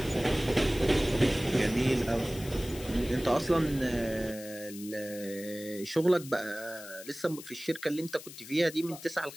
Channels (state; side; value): noise; left; hiss, 15 dB below the sound